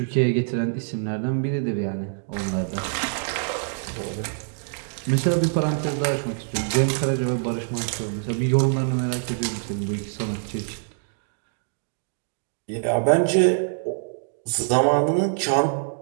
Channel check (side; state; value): left; silent; digital silence